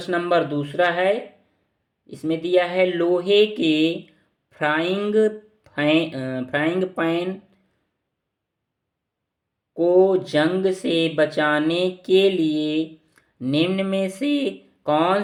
नंबर दूसरा है, इसमें दिया है लोहे के फ्राइंग पैन को जंग से बचाने के लिए निम्न में से कौन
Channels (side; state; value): both; identical; correlation 1.00